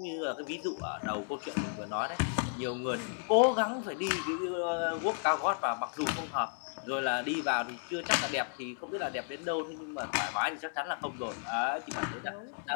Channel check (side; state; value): right; silent; 55 dB below the other